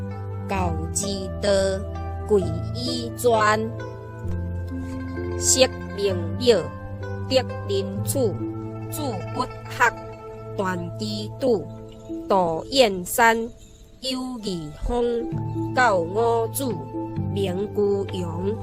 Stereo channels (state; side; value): identical; both; correlation 1.00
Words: 教之道，贵以专。识名表，得人处，主不学，断机杼。道燕山，有义风，教五子，名居阳。